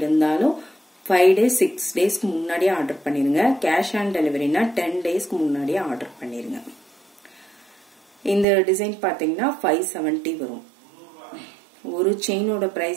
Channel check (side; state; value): left; drops out; at 8.5 s